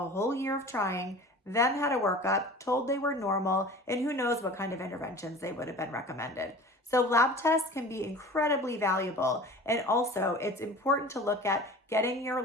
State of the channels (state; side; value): normal; both; correlation 0.40